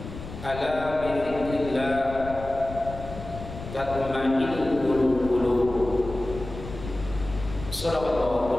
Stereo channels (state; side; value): noise; left; rumble, 11 dB below the sound